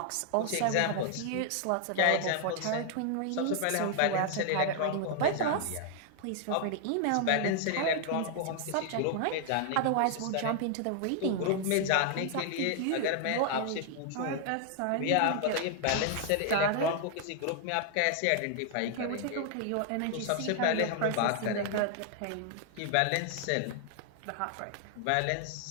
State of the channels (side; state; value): both; different; correlation 0.00